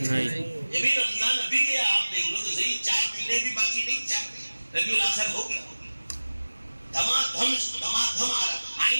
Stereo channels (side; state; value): both; inverted; correlation -1.00